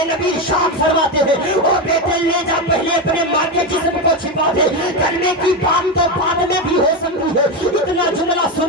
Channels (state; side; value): normal; both; correlation 0.12